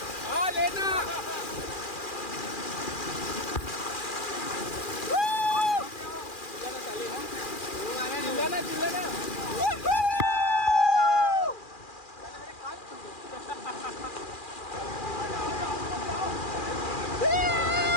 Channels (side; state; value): right; late; 2.4 ms